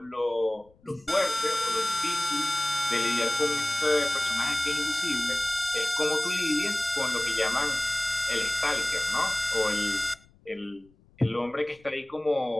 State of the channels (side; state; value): left; noise; rumble, 30 dB below the sound